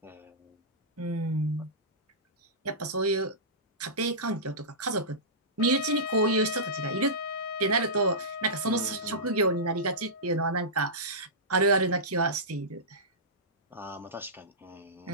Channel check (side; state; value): both; normal; correlation -0.17